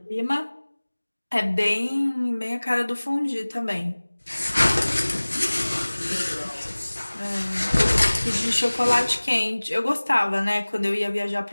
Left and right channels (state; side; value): inverted; both; correlation -1.00